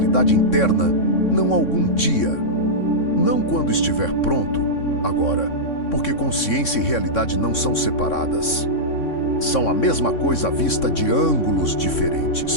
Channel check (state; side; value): late; right; 3.6 ms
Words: interna, não algum dia. Não quando estiver pronto, agora, porque consciência e realidade não são separadas. São a mesma coisa vista de ângulos